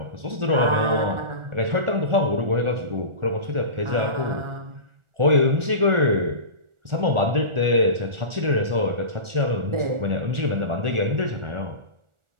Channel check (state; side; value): late; left; 1.4 ms